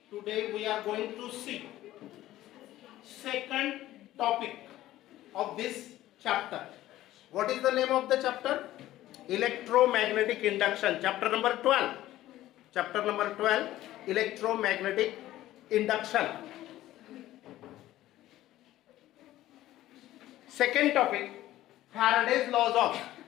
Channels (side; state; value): right; quieter; 14.8 dB